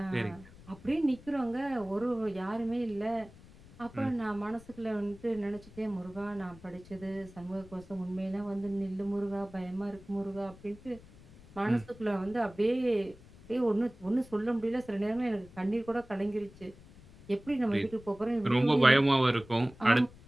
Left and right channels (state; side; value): noise; left; rumble, 21 dB below the sound